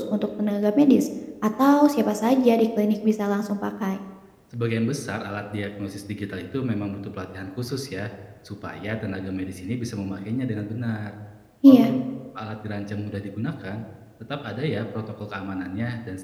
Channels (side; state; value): both; identical; correlation 1.00